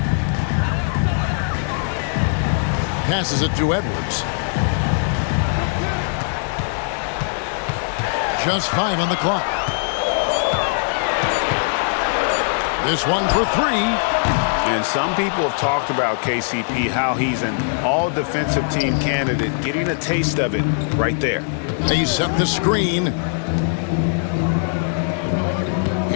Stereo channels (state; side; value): silent; right; digital silence